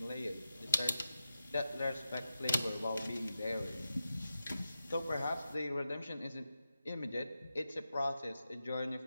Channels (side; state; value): both; inverted; correlation -0.91